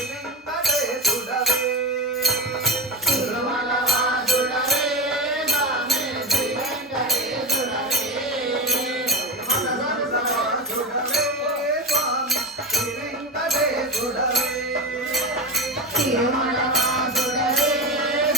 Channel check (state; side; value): normal; both; correlation 0.20